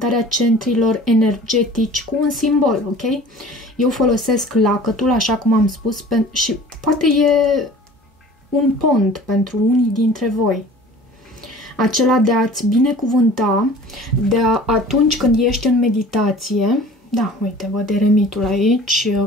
centrilor energetici cu un simbol, ok? Eu folosesc lacătul, așa cum am spus, și poate e un pont pentru unii dintre voi. Acela de a-ți binecuvânta, atunci când ești în meditație. Da, uite, văd eremitul aici,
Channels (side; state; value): both; normal; correlation 0.45